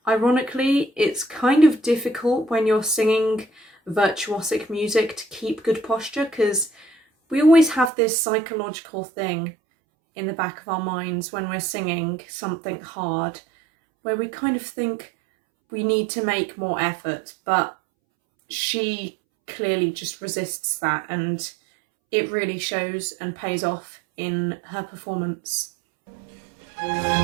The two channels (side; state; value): left; drops out; at 7.9 s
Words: ironically, it's kind of difficult when you're singing virtuosic music to keep good posture, because we always have this psychological thing in the back of our minds when we're singing something hard, where we kind of think we need to make more effort, but she clearly just resists that, and it really shows and pays off in her performance.